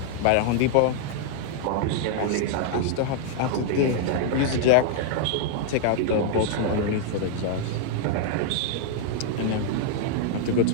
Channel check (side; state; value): both; different; correlation 0.00